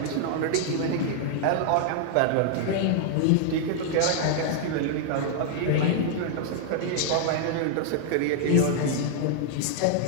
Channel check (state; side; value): different; both; correlation 0.00